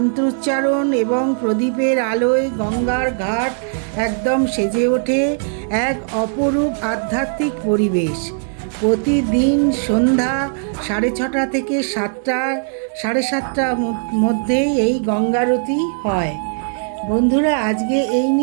এবং প্রদীপের আলোয় গঙ্গার ঘাট একদম সেজে ওঠে এক অপরূপ আধ্যাত্মিক পরিবেশ। প্রতিদিন সন্ধ্যা 6:30 থেকে 7:30 মধ্যে এই গঙ্গারতি হয়। বন্ধুরা, আজকে এই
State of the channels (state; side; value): silent; left; digital silence